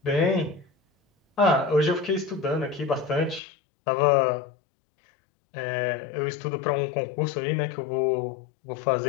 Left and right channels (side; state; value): right; drops out; at 3.4 s